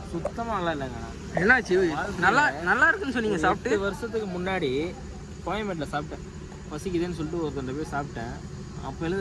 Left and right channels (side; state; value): both; identical; correlation 1.00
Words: சுத்தமாக நல்லா இல்லைங்க. என்னாச்சு? நல்லா இருக்குன்னு சொன்னீங்க. சாப்பிட்டு 8 வருஷத்துக்கு முன்னாடி கோயம்பேட்டில் சாப்பிட்டேன். பசிக்குதுன்னு சொல்லிட்டு ஒருத்தர் போய் சாப்பிட்டேன்.